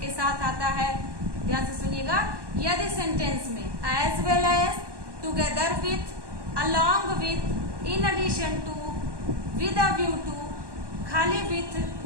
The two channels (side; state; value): left; late; 1.1 ms